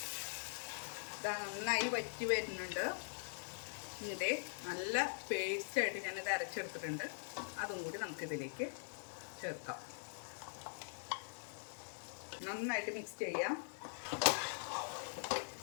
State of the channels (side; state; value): right; silent; digital silence